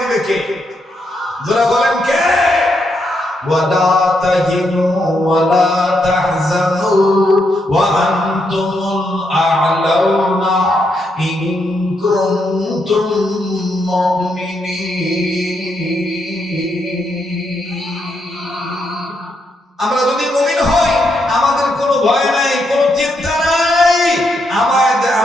কে? যারা বলেন কে? ওয়ালা তাহিনু ওয়ালা তাহজানু ওয়া আনতুমুল আ'লাউনা ইন কুনতুম মুমিনিন।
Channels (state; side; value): normal; both; correlation 0.79